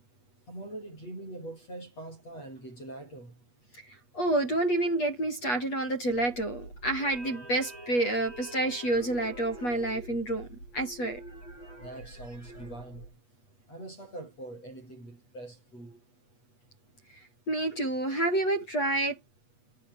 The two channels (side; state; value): right; late; 8.3 ms